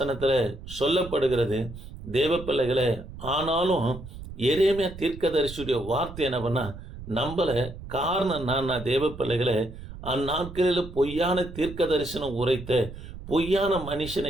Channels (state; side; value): noise; right; rumble, 13 dB below the sound